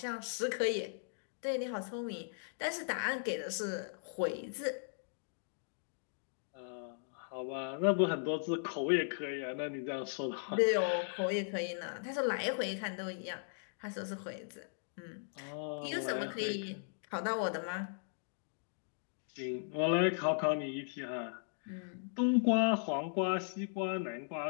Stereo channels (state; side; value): silent; right; digital silence